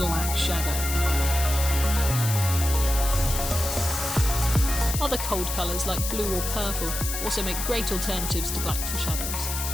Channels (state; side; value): noise; left; hiss, 4 dB below the sound